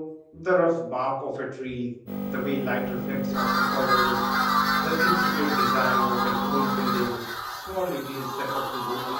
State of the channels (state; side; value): identical; both; correlation 1.00